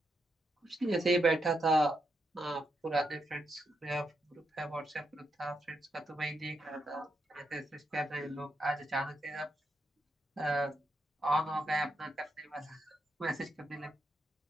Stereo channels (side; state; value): both; normal; correlation 0.81